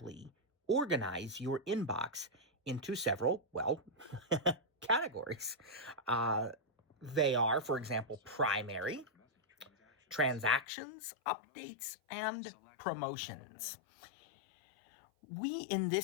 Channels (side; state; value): right; drops out; at 10.7 s